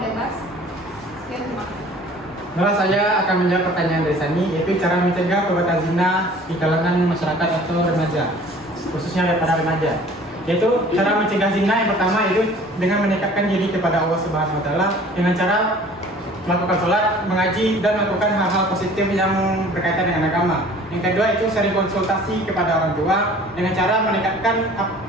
bebas? Sekian, terima kasih. Nah, saya akan menjawab pertanyaan dari Sani, yaitu cara mencegah perbuatan zina di kalangan masyarakat atau remaja, khususnya para remaja. Yaitu cara mencegah zina yang pertama itu dengan mendekatkan diri kepada Allah Subhanahu wa Ta'ala dengan cara melakukan sholat, mengaji, dan melakukan hal-hal positif yang berkaitan dengan agama. Yang kedua itu sering konsultasi kepada orang tua dengan cara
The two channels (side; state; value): both; normal; correlation 0.49